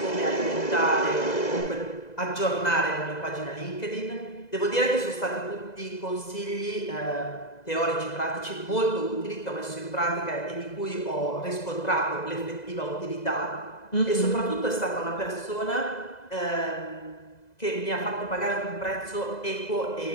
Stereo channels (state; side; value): late; right; 2.0 ms